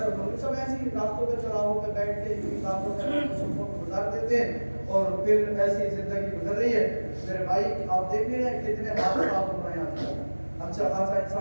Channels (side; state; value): both; inverted; correlation -1.00